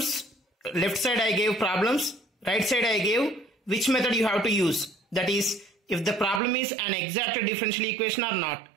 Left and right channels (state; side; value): drops out; left; at 6.4 s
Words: Left side I gave problems, right side I gave which method you have to use. That is, if the problem is an exact differential equation or not.